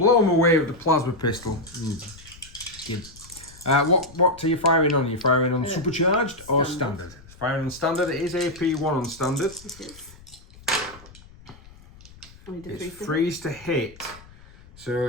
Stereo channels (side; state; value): left; noise; rumble, 22 dB below the sound